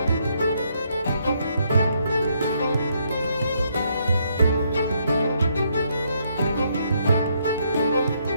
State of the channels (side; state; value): both; inverted; correlation -0.73